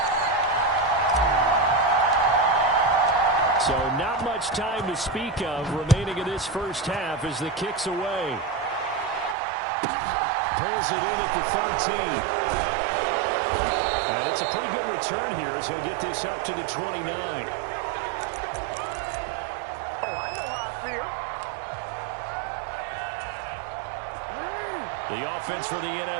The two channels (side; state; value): left; drops out; at 9.3 s